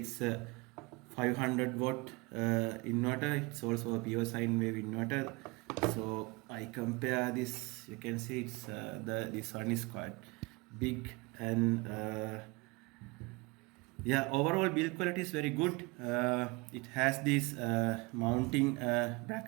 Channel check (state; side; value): quieter; left; 25.8 dB